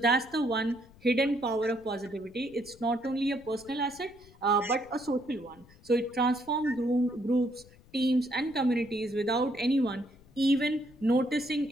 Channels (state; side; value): noise; left; rumble, 25 dB below the sound